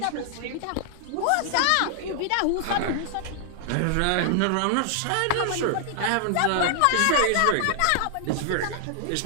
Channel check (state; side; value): different; both; correlation 0.00